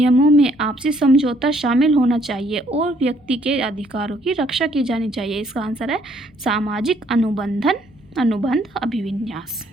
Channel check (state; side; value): normal; both; correlation 0.66